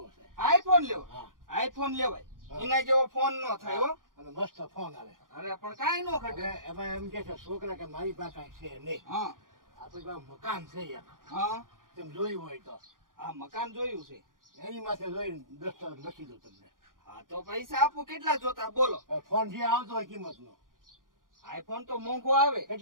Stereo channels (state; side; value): late; left; 0.90 ms